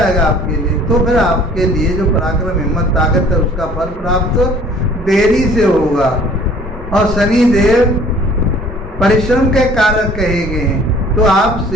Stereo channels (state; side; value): normal; both; correlation 0.53